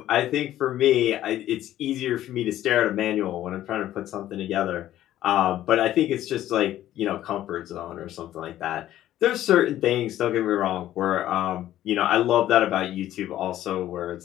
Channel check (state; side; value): quieter; right; 13.1 dB